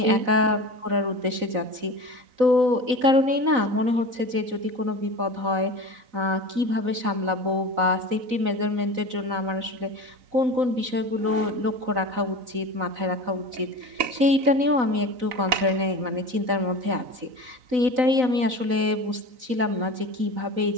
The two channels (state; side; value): late; left; 4.0 ms